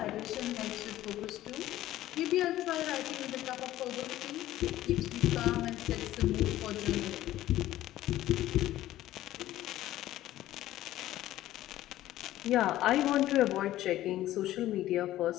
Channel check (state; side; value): quieter; right; 14.5 dB